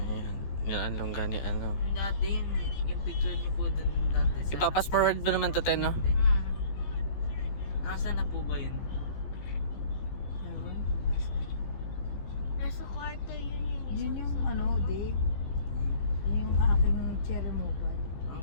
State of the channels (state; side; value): late; right; 15 ms